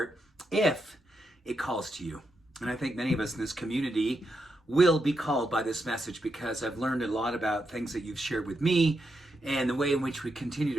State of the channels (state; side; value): normal; both; correlation 0.84